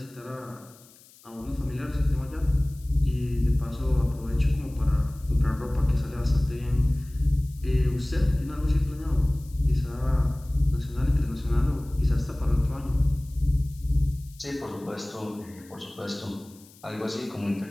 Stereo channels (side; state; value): left; noise; hiss, 25 dB below the sound